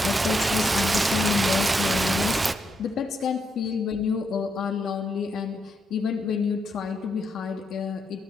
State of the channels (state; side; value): normal; both; correlation 0.80